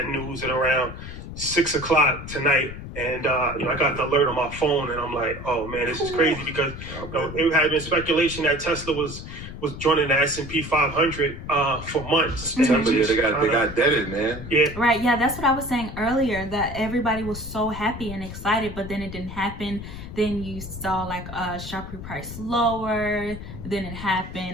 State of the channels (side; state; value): left; noise; rumble, 10 dB below the sound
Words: news at around 6 o'clock tonight. And, I got the alert on my phone and I'm like, oh man, this is crazy, because it had been speculation that Tesla was joining the S&P 500 for months. They got deaded, man. Yeah. Right. Yeah, that's what I was saying earlier, that everybody was so happy and excited, but then it didn't happen. Then you saw like a sharp reprice lower. Then it